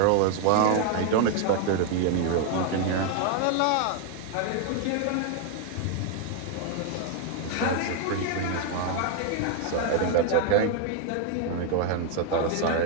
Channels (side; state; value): both; different; correlation 0.01